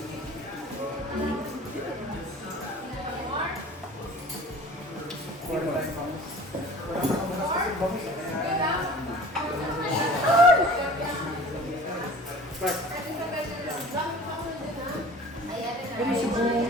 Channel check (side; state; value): both; normal; correlation 0.43